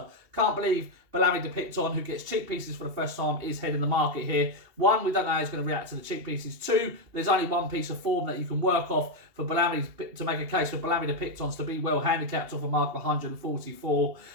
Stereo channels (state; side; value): late; left; 2.8 ms